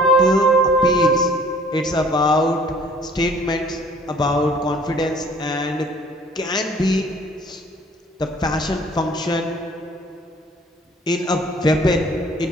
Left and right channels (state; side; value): normal; both; correlation 0.54